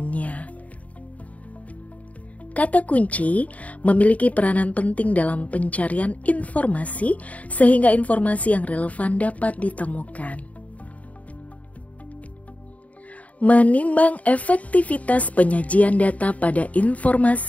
Kata kunci memiliki peranan penting dalam pencarian informasi sehingga informasi yang relevan dapat ditemukan. Menimbang efektivitas penyajian data pada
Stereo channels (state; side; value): late; right; 0.069 ms